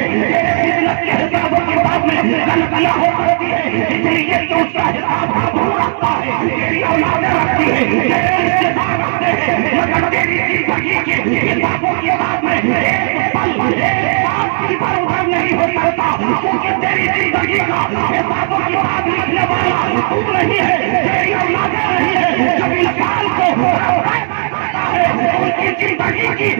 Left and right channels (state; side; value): silent; left; 59 dB below the other